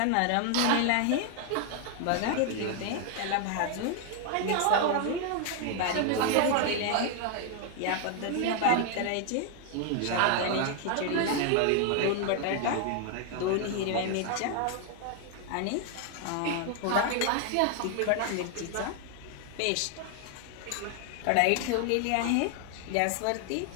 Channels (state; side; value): different; both; correlation 0.00